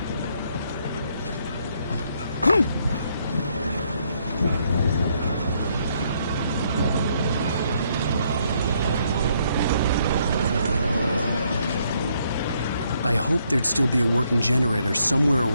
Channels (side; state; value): both; inverted; correlation -0.72